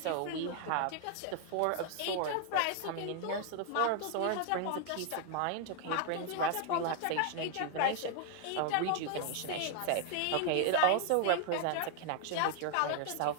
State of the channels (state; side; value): different; both; correlation 0.00